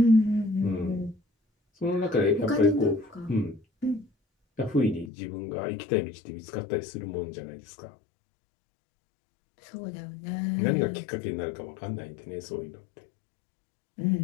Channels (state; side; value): drops out; right; at 5.1 s